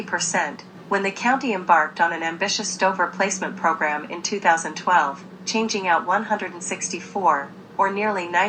when the county embarked on an ambitious stove replacement program in 2012, changing out 164, or nearly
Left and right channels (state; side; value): identical; both; correlation 1.00